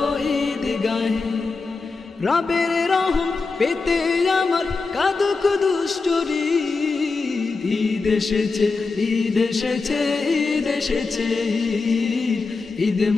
ঈদগাহে। রবের রহম পেতে আমার কাঁদুক দুষ্টরি, ঈদ এসেছে, ঈদ এসেছে, ঈদ এসেছে, ঈদ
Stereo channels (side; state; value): right; quieter; 4.2 dB